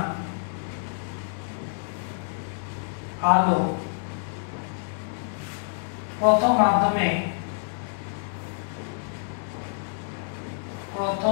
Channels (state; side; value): silent; right; digital silence